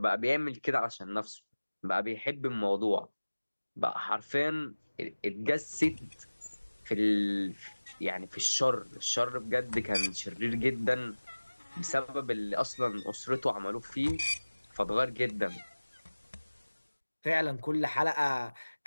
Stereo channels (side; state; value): both; inverted; correlation -1.00